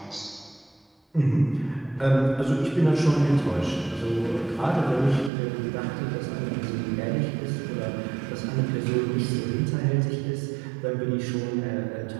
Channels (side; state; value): left; drops out; at 5.3 s